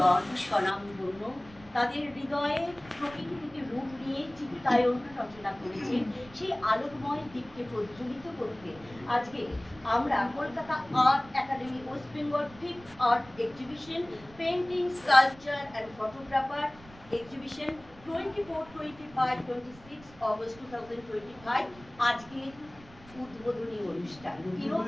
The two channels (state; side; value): noise; right; rumble, 22 dB below the sound